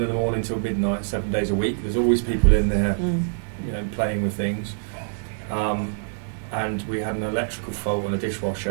in the morning till midnight, 7 days a week. There's always people in there, playing with things. And we had an electrical fault on a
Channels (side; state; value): left; silent; digital silence